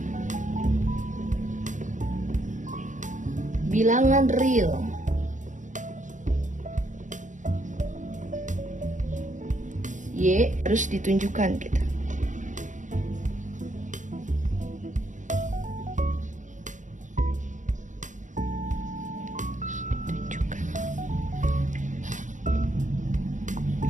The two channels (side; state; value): left; late; 0.36 ms